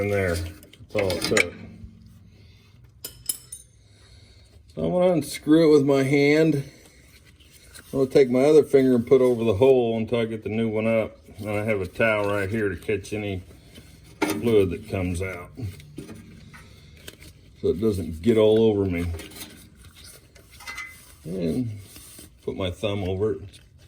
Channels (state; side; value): identical; both; correlation 1.00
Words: there, that's all it took. So I'm gonna unscrew it with my hand. I'm gonna take my other finger and put over the hole until I get the new one up. And I have a towel right here to catch any fluid that comes out, so it doesn't get all over me. And put my thumb over it,